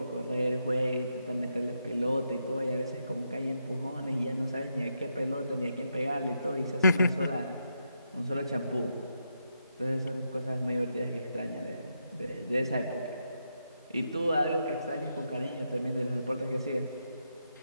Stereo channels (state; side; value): inverted; both; correlation -0.82